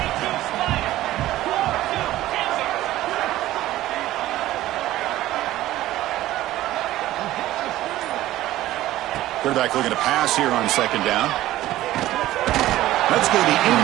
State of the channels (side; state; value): left; quieter; 15.2 dB